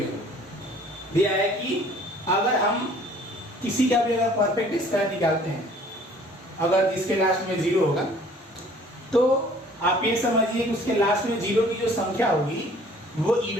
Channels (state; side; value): normal; both; correlation 0.54